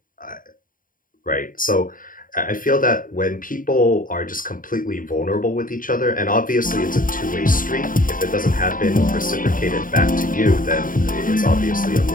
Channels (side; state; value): right; late; 0.40 ms